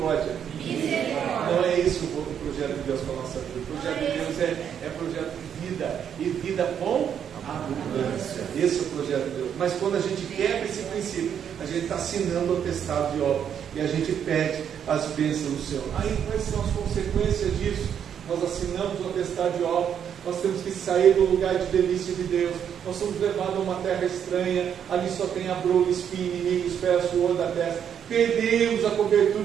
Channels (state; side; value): quieter; left; 8.5 dB